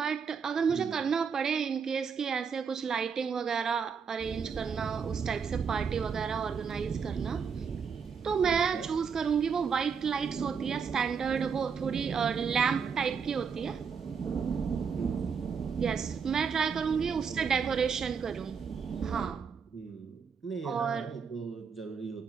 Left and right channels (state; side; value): quieter; left; 6.2 dB